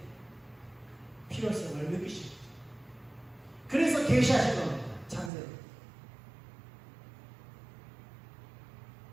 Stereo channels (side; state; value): left; drops out; at 5.3 s